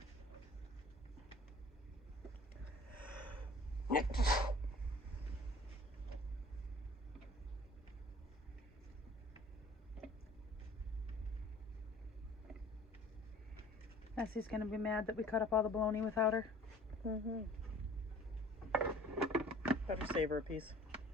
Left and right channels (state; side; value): normal; both; correlation 0.48